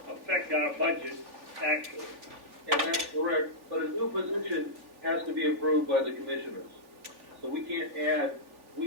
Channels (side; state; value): left; late; 3.5 ms